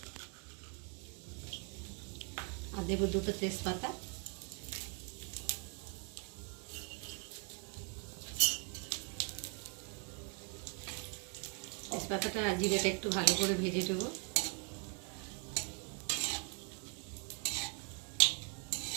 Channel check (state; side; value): quieter; left; 36.7 dB